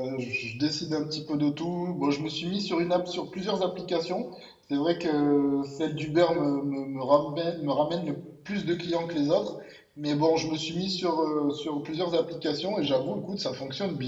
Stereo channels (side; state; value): both; identical; correlation 1.00